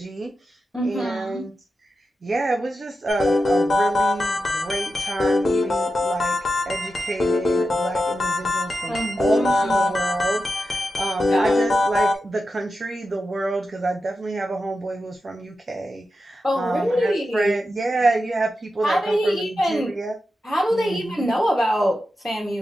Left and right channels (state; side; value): normal; both; correlation 0.90